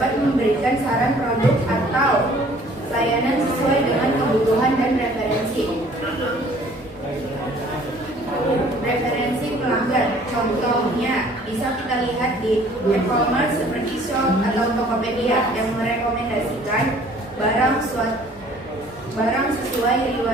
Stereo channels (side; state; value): both; normal; correlation 0.54